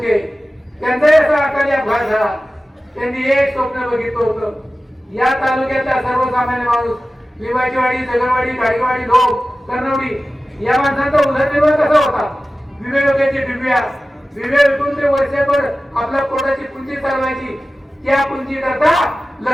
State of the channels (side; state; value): both; normal; correlation 0.96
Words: त्यांचाही असा अकाली अपघात झाला. त्यांनी एक स्वप्न बघितलं होतं, या तालुक्यातला सर्वसामान्य माणूस लिंबाचीवाडी, जगरवाडी, गाडीवाडी, लोक, कर्णवडी या माणसांचा उदरनिर्वाह कसा होता? विवेकाची बिब्या विवेकून ते वर्षभर आपल्या पोटाची पुंजी चालवायची. त्या पुंजी करता